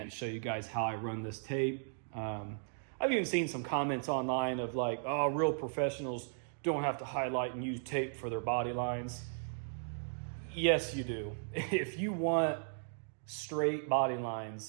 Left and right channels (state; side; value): silent; left; digital silence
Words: show you guys how I run this tape. I've even seen some comments online of like, oh, real professionals don't have to highlight and use tape for their body lines. Yes, you do. If you want straight body